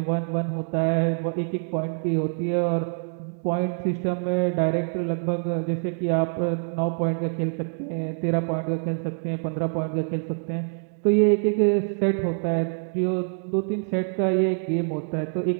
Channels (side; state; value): left; silent; 60 dB below the other